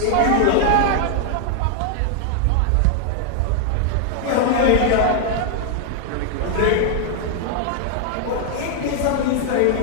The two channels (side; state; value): both; different; correlation 0.00